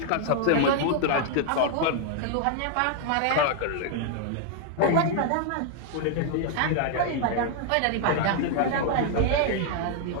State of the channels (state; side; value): different; both; correlation 0.00